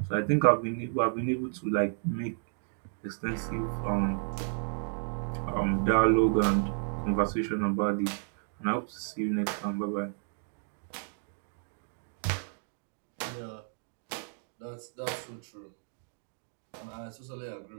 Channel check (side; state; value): left; silent; digital silence